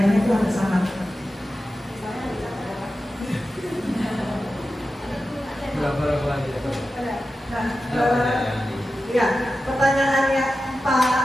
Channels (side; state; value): both; normal; correlation 0.92